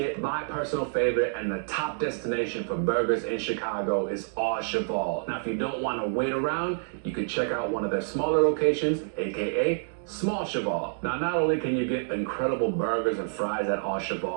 My personal favorite and the top destination for burgers in Chicago is Au Cheval. Now, if you don't want to wait around, you can check out one of their smaller locations, aka Small Cheval. Now, not only can you get incredible burgers and fries at Au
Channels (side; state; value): left; silent; digital silence